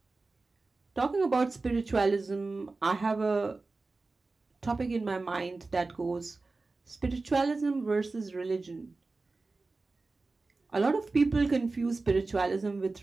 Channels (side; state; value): left; quieter; 3.6 dB